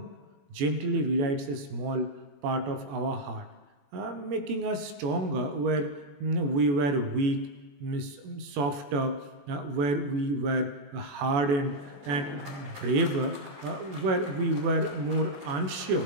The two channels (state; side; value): late; left; 21 ms